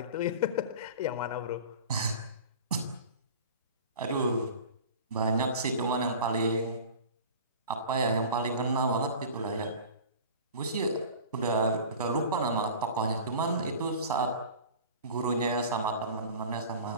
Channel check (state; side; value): inverted; both; correlation -0.38